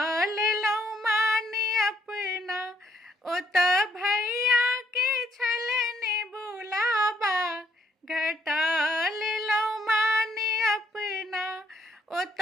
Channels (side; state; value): both; normal; correlation 0.70